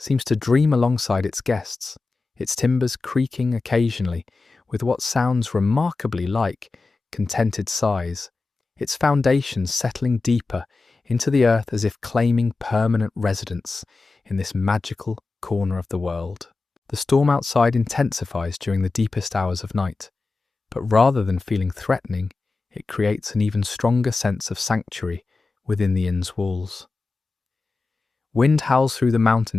to dream alongside its guests, its timbers creaking occasionally with what sounds remarkably like contented sighs, its foundations settling deeper into the earth as if claiming permanent residence in this magical corner of the world. The storm outside intensifies during the deepest hours of night, but rather than feeling threatening, it creates an even stronger sense of sanctuary within the inn's walls. Wind howls through the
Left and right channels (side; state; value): right; quieter; 3.8 dB